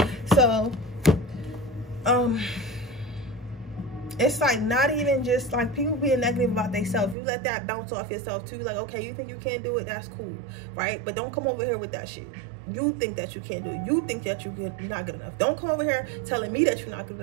So it's like not even just like people being negative about themselves. You let that bounce off yourself too. Like, okay, you think you can't do it, that's cool, right? But don't come over here with that shit. You think that you can't do it. You think that you're not good enough. Don't come over here telling me that you're not good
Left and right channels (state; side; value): drops out; left; at 7.2 s